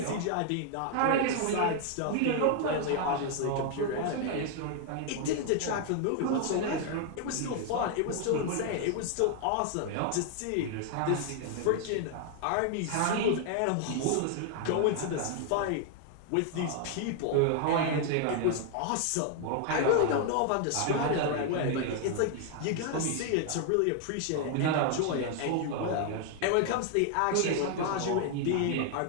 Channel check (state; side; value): different; both; correlation 0.00